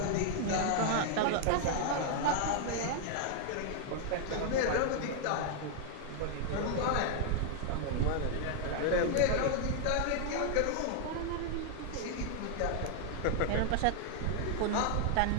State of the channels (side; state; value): both; different; correlation 0.00